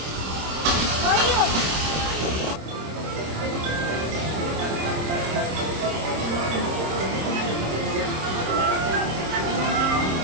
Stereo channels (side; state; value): left; late; 26 ms